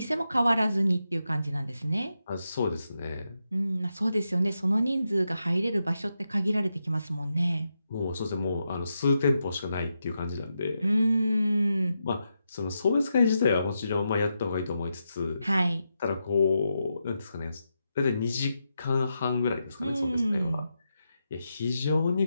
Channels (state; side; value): inverted; both; correlation -0.86